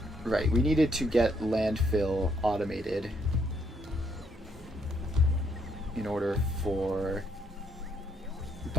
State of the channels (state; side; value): normal; both; correlation 0.72